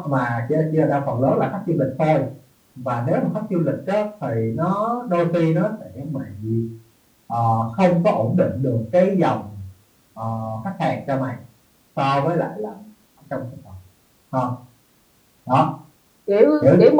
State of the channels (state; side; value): identical; both; correlation 1.00